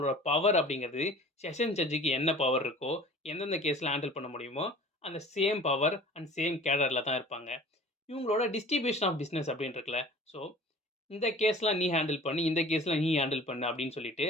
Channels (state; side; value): normal; both; correlation 0.45